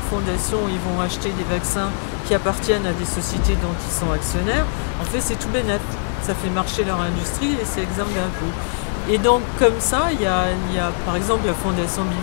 fondation ils vont acheter des vaccins qui appartiennent à des sociétés dont ils sont actionnaires, en fait c'est tout bénef. Ça fait marcher leur industrie et c'est exempt d'impôts. Et donc comme ça, il y a par exemple la fondation Bill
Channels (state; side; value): silent; right; digital silence